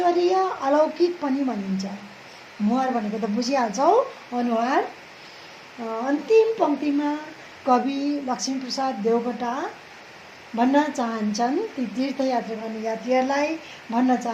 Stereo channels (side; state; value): both; identical; correlation 1.00